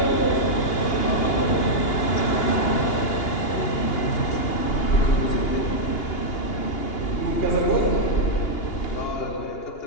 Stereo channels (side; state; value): right; late; 2.8 ms